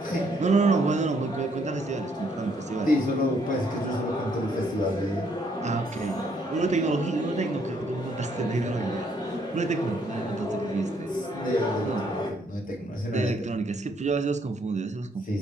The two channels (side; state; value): both; normal; correlation 0.69